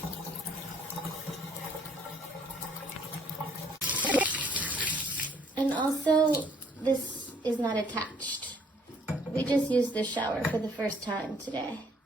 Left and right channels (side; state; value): both; normal; correlation 0.63